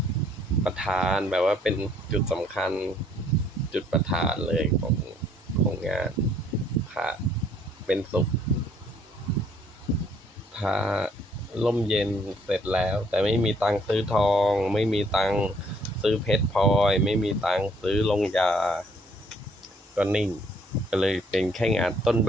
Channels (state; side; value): normal; both; correlation 0.64